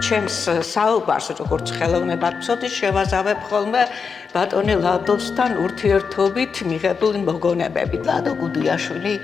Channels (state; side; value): quieter; right; 5.6 dB